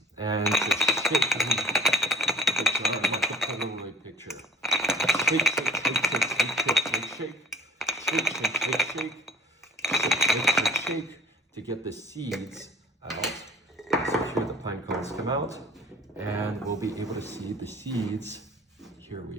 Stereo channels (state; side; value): normal; both; correlation 0.51